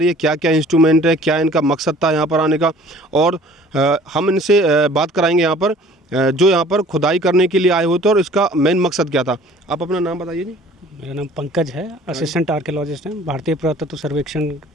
है। क्या क्या इंस्ट्रूमेंट है, क्या इनका मकसद था यहाँ पर आने का, और हम इनसे बात कराएंगे यहाँ पर जो यहाँ पर खुदाई करने के लिए आए होते और इसका मेन मकसद क्या था। आप अपना नाम बताइए जी। मेरा नाम पंकज है, असिस्टेंट आर्कियोलॉजिस्ट हैं। भारतीय पुरातत्व सर्वेक्षण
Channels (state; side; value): normal; both; correlation 0.51